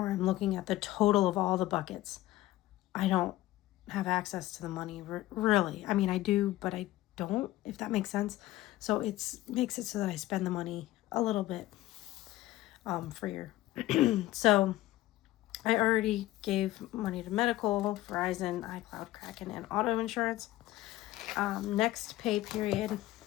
I'm looking at the total of all the buckets. I don't have access to the money, really. I mean, I do, but I don't, if that makes sense. So it makes it so that I spend the money a little bit freer. So I already gave money to medical, Verizon, iCloud, Kraken, and auto insurance. Next pay period,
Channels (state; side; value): quieter; right; 16.2 dB